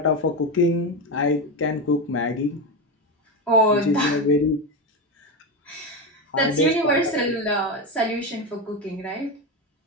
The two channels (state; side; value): normal; both; correlation 0.14